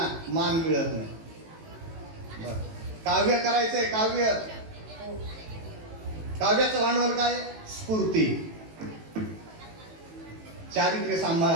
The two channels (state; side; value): late; left; 18 ms